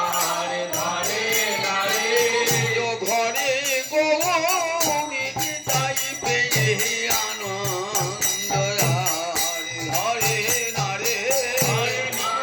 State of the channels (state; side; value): identical; both; correlation 1.00